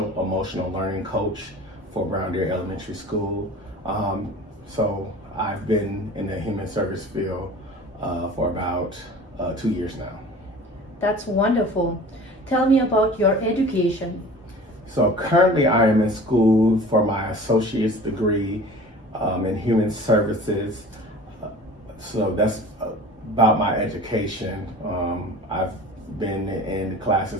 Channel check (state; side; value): normal; both; correlation 0.42